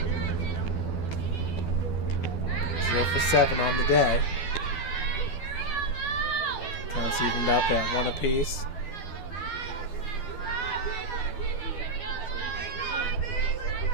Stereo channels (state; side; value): late; right; 12 ms